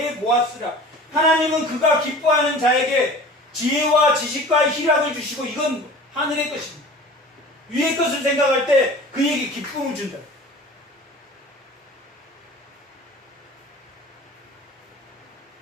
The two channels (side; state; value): both; normal; correlation 0.41